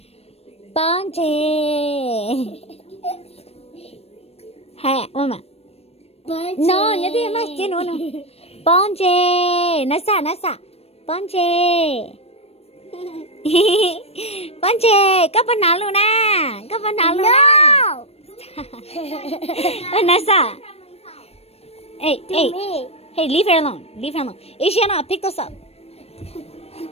Bonje. Hey, Mama. No, nhớ đi mà, chứ nữa. Bonje. Nasa. Bonje. Bonje, có phần nào luôn à? Có phần nào luôn à? Vanessa. Hey, leave her alone. Ishiana, pick this up.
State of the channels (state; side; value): late; right; 0.29 ms